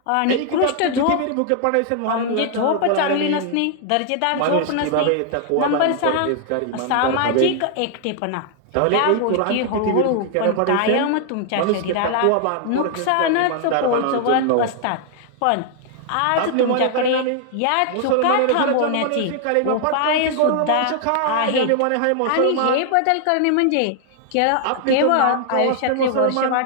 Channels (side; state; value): both; different; correlation 0.00